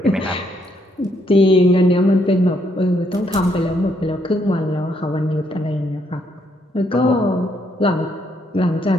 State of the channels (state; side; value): normal; both; correlation 0.73